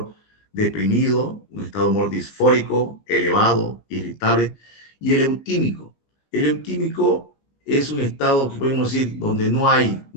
deprimido, un estado de humor disfórico, elevado, irritable, y el eutímico. El eutímico es un estado que podemos decir donde no hay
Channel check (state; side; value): late; right; 19 ms